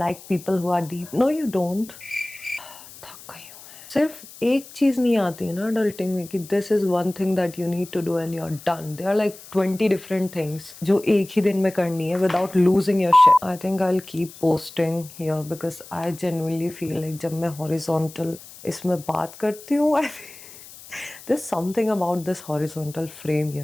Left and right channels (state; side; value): noise; left; hiss, 18 dB below the sound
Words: people who are deep. No you don't. थक गई हूँ मैं। सिर्फ एक चीज नहीं आती है ना अडल्टिंग में कि this is one thing that you need to do and you are done. There are like 20 different things जो एक ही दिन में करनी है without losing your shit. I think I will keep posting here because I genuinely feel like जब मैं horizontal इसमें बात करती हूँ, there's something about this horizontal frame, you